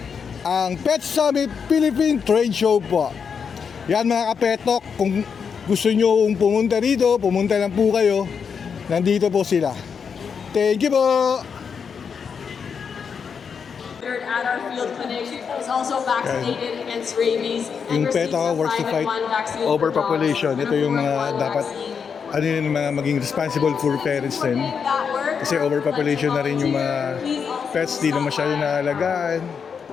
Ang Pet Summit Philippine Trade Show po. Yan mga kapetok, kung gusto nyo pumunta rito, pumunta lang po kayo. Nandito po sila. Thank you po! At our field clinic is also vaccinated against rabies and Yung pet receives a works to fight private one vaccine overpopulation. Ito yung mga number one dapat vaccine. ano yun, mga maging responsible for parents din. Kasi overpopulation na rin yung mga pets, di na masyado naalagaan.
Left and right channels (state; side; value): quieter; right; 6.4 dB